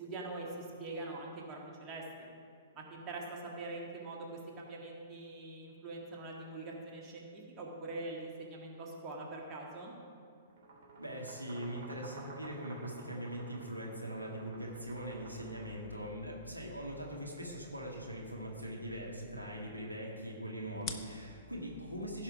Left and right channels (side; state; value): both; inverted; correlation -0.45